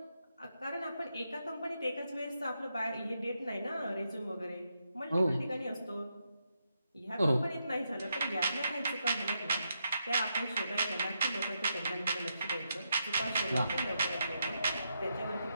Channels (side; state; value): both; inverted; correlation -0.83